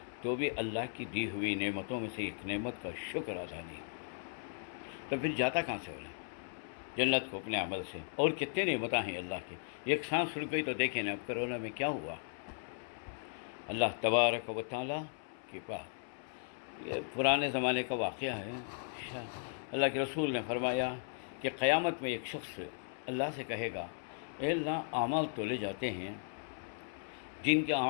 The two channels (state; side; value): silent; right; 53 dB below the other